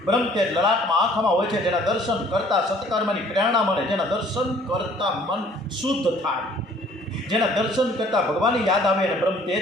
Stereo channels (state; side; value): normal; both; correlation 0.56